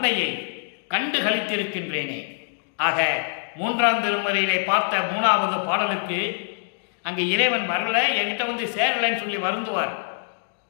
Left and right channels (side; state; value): right; silent; digital silence